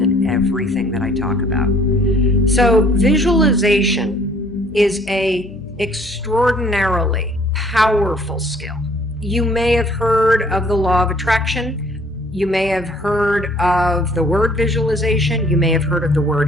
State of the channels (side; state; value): left; noise; hum, 21 dB below the sound